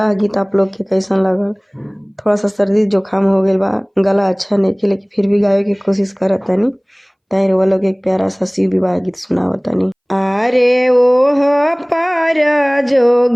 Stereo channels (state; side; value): identical; both; correlation 1.00